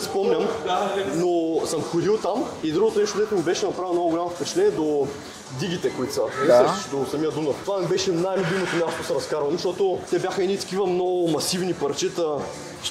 спомням, но съм ходил там и другото нещо, дето ми беше направило много голямо впечатление до дигите, които са. Не сещаш до самия Дунав. Това ми беше най-любимото място да се разкарвам, защото те бяха едни такива много масивни парчета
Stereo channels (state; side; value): identical; both; correlation 1.00